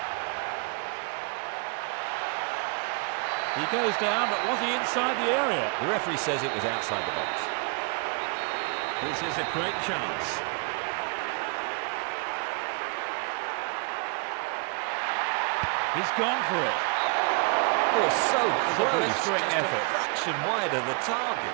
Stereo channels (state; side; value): quieter; left; 34.6 dB